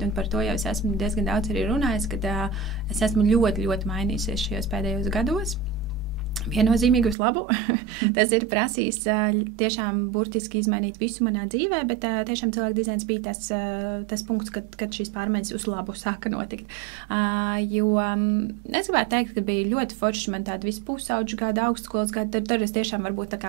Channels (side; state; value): left; drops out; at 7.2 s